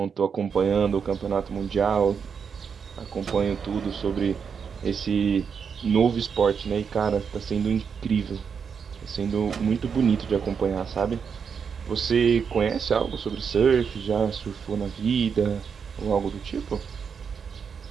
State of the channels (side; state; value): left; quieter; 6.5 dB